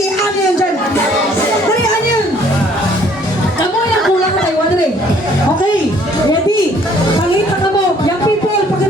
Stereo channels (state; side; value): normal; both; correlation 0.60